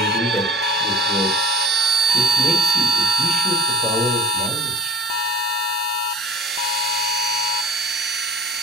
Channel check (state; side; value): normal; both; correlation 0.34